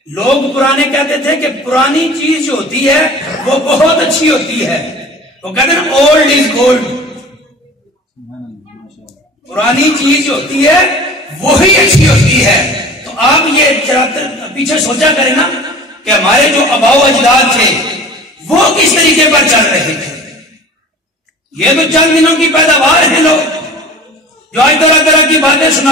لوگ پرانے کہتے تھے کہ پرانی چیز جو ہوتی ہے وہ بہت اچھی ہوتی ہے, وہ کہتے ہیں اولڈ از گولڈ, پرانی چیز جو ہوتی ہے وہی اچھی ہوتی ہے. تو آپ یہ پیچھے سوچا کریں نا کہ ہمارے جو آباء و اجداد تھے وہ کس طریقے پر چل رہے تھے. یہ تو چند دنوں کی پیداوار ہیں لوگ جو آج طرح طرح کی باتیں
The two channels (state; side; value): normal; both; correlation 0.41